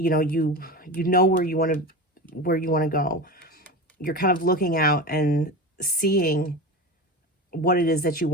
know where you want to go. You're kind of looking out and seeing what it is that you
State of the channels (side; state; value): both; normal; correlation 0.27